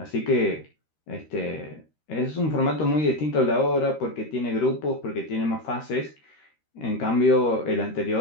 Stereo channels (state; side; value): late; right; 13 ms